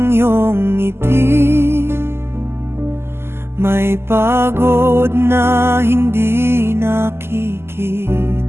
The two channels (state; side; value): late; left; 0.12 ms